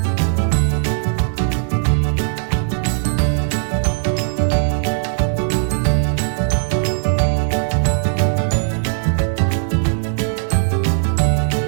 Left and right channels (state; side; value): silent; left; digital silence